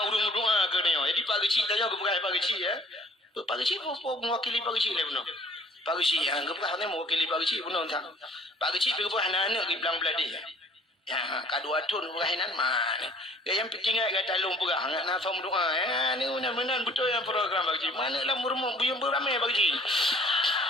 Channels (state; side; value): normal; both; correlation 0.55